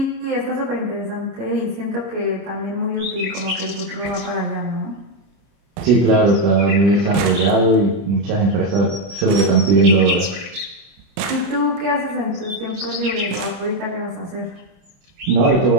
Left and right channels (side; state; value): left; late; 30 ms